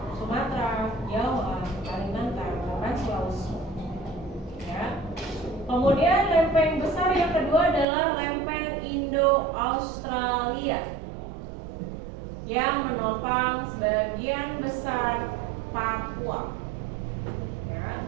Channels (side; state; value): left; drops out; at 7.9 s